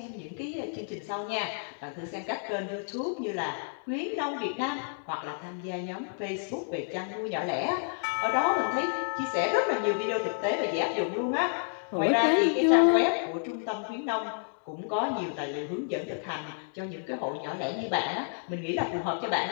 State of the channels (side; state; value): right; silent; digital silence